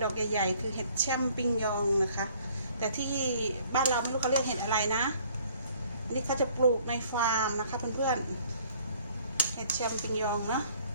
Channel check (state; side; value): inverted; both; correlation -0.58